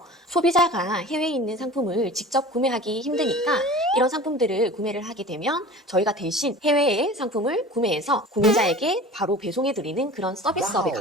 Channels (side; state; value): both; normal; correlation 0.39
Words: 소비자가 해외에 있는 상품을 직접 구매하기 힘드니까 이런 상품들을 구매를 하게 되면 저희가 대신 해외의 상품을 구매해서 구매자에게 바로 배송해드리는 그런 서비스업에